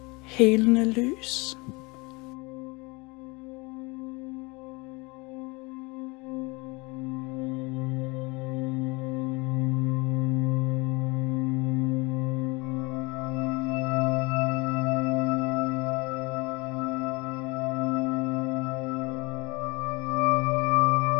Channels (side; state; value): right; quieter; 26.2 dB